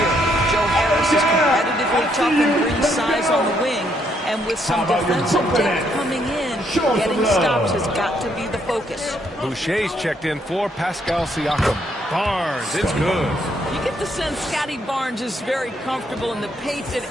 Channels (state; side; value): normal; both; correlation 0.72